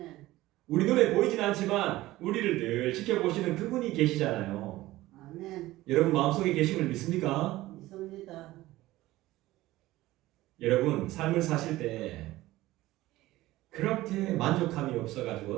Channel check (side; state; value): left; quieter; 17.1 dB